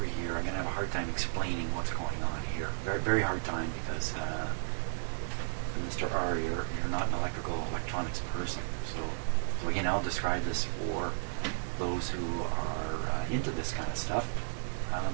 here. I'm going to have a hard time explaining what's going on here. Very, very hard time because Mr. R, you're not an electronics person. So again, I'll describe this for those who are into this kind of stuff,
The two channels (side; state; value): left; silent; digital silence